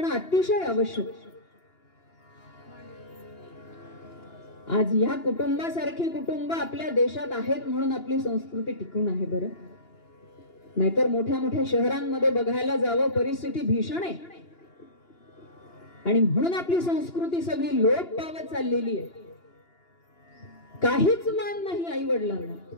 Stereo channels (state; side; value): late; right; 2.9 ms